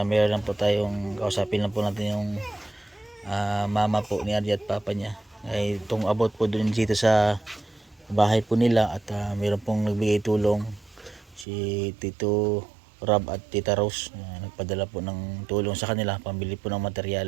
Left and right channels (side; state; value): left; drops out; at 11.5 s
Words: mayroon lang po tayong kausapin lang po natin yung mama po ni RJ at papa niya. Ay itong about po dun dito sa bahay po nila at mayroon pong nagbigay tulong si Tito Rob at Tita Rose. Nagpadala po ng tulong sa kanila pambili po ng